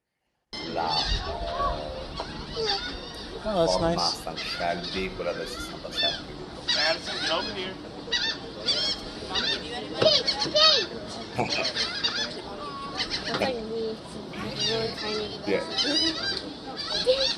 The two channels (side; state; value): both; identical; correlation 1.00